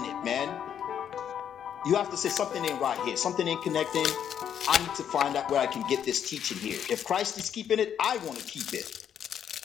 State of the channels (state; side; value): quieter; right; 9.0 dB